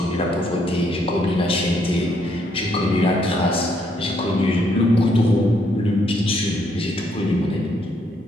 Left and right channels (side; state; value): both; normal; correlation 0.72